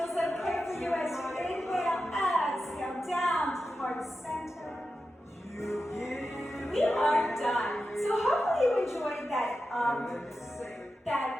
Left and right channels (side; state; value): both; normal; correlation 0.91